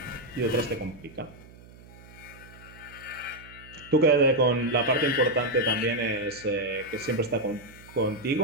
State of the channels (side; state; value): right; noise; hum, 21 dB below the sound